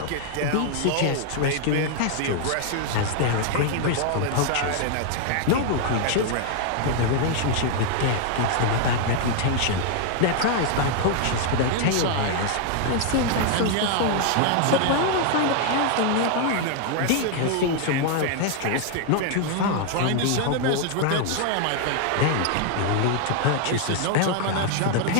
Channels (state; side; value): different; both; correlation 0.00